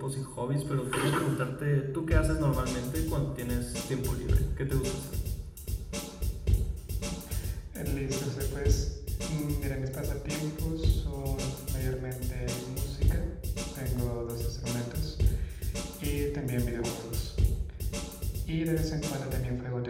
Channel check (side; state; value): both; identical; correlation 1.00